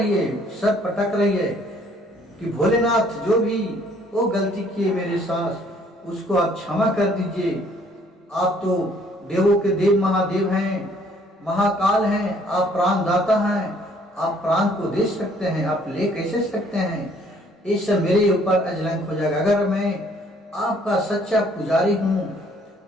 है, सब पटक रही है कि भोलेनाथ जो भी वो गलती किए मेरे सास, उसको आप क्षमा कर दीजिए। आप तो देवों के देव महादेव हैं, महाकाल हैं, आप प्राणदाता हैं, आप प्राण को दे सकते हैं, आप ले कैसे सकते हैं? ये सब मेरे ऊपर अजलंक हो जाएगा। अगर मैं आपका सच्चा पुजारी हूँ,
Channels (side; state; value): both; normal; correlation 0.61